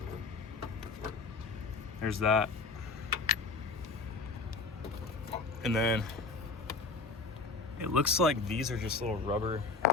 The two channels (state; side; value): quieter; right; 4.0 dB